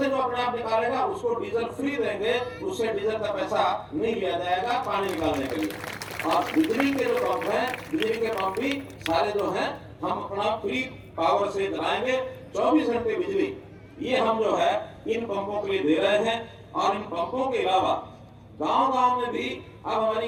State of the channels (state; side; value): identical; both; correlation 1.00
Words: जो अपने आप निकालेगा उसको डीजल फ्री देंगे, उससे डीजल का पैसा नहीं लिया जाएगा पानी निकालने के लिए। और बिजली के जो पंप हैं, बिजली के पंप भी सारे जो हैं हम अपना फ्री पावर से चलाएंगे। 24 घंटे बिजली ये हम जो है इन पंपों के लिए दे रहे हैं। और इन पंपों के अलावा गांव-गांव में भी अब हमारी